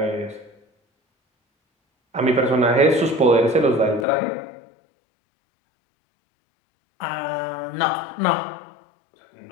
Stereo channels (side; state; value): right; drops out; at 4.0 s